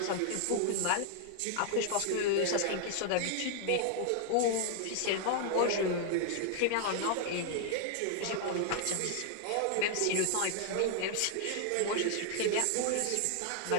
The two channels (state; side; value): different; both; correlation 0.00